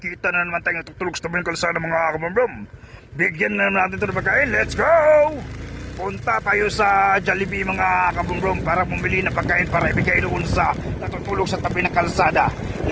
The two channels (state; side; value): identical; both; correlation 1.00